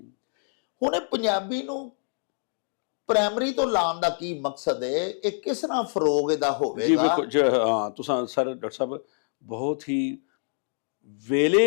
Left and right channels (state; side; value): silent; right; digital silence